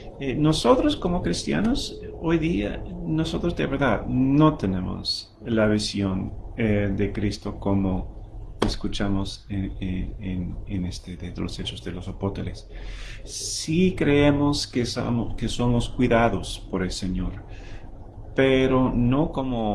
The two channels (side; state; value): both; identical; correlation 1.00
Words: nosotros como cristianos, hoy día, nosotros de verdad no tenemos la visión de Cristo como escuchamos en este de los Hechos de los Apóstoles. Sí creemos que somos cuidados por el Señor, pero no